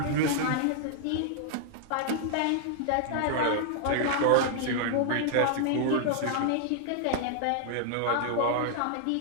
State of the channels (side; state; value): both; different; correlation 0.00